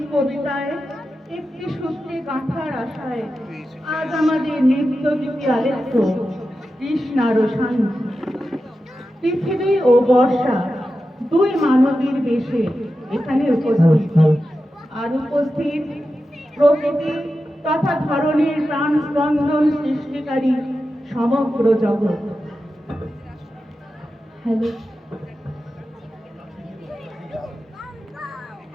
কবিতায় একটি সূত্রে গাঁথার আশায় আজ আমাদের নৃত্য গীতি আলেখ্য কৃষ্ণার শান্তি। পৃথিবী ও বর্ষা দুই মানবীর বেশে এখানে উপস্থিত, আর উপস্থিত প্রকৃতি তথা ধরনের প্রাণ স্পন্দন সৃষ্টিকারী সমগ্র জগৎ। হ্যালো,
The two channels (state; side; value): normal; both; correlation 0.91